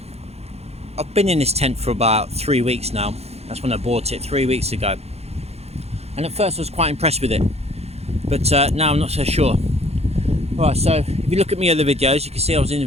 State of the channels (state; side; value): late; left; 0.30 ms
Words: been in this tent for about 3 weeks now. That's when I bought it 3 weeks ago. And at first I was quite impressed with it, but now I'm not so sure. Alright, so if you look at my other videos, you can see I was in